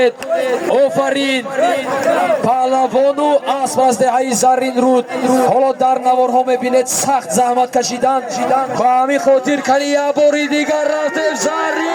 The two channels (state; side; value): identical; both; correlation 1.00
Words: آفرین پهلوانو اسب از دهی زرین رود حالا در نوارها میبینید سخت زحمت کشیدن با همین خاطر کنی یه باری دیگر رفتیم